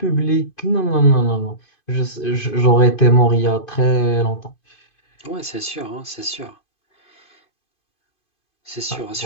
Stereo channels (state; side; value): late; right; 2.5 ms